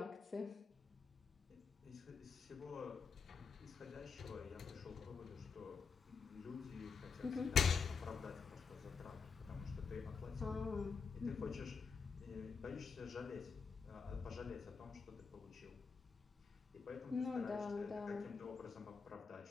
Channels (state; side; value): quieter; right; 5.4 dB